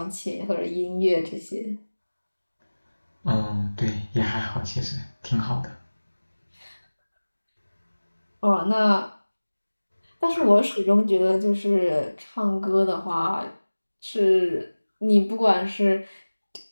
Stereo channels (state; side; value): inverted; both; correlation -1.00